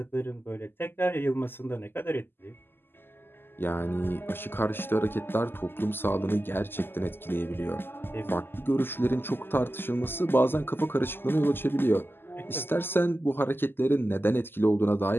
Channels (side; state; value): right; late; 0.10 ms